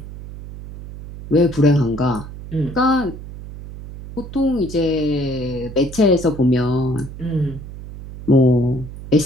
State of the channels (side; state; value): right; noise; hum, 13 dB below the sound